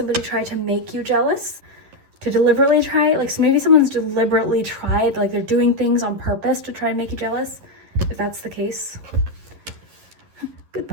tried to make you jealous. To deliberately try, like, so maybe someone's deliberately tried, like they're doing things on purpose to try and make you jealous, if that's the case.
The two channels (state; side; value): late; left; 11 ms